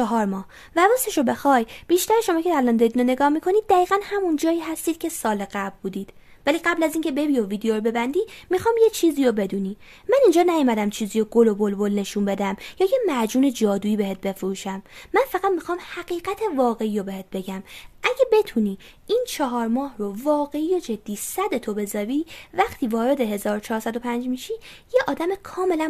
ماه. و راستش رو بخوای بیشتر شما که الان دارید نگاه میکنید دقیقاً همون جایی هستید که سال قبل بودید. ولی قبل از اینکه ببی و ویدیو رو ببندی میخوام یه چیزی رو بدونی. من اینجا نیومدم چیزی رو گل و بلبل نشون بدم یا یه معجون جادویی بهت بفروشم. من فقط میخوام حقیقت واقعی رو بهت بگم. اگه بتونی این 4 ماه رو واقعی و جدی صدتو بذاری، وقتی وارد 1405 میشی یه آدم کاملا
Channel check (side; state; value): both; identical; correlation 1.00